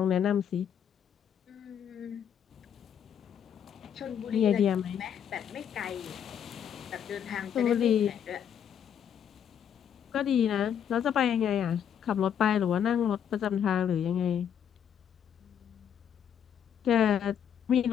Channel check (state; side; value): quieter; right; 8.7 dB